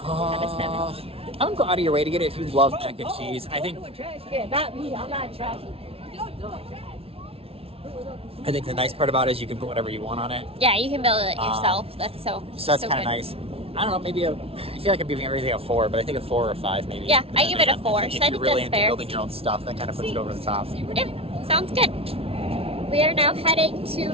of 7. I would go out of your way to get it if you love mac and cheese. I think the nice part about it is you can put whatever you want on it. Yeah, you can build it yourself. That's so that's kind of nice. I don't know, maybe I feel like I'm giving everything a 4, but I think a 4 or 5 maybe. Yeah, I give it a 4. If So I you're think really that's into fair. building your own stuff, that kind of puts it over the top. Yeah, sounds good. We are now heading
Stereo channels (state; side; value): late; left; 0.28 ms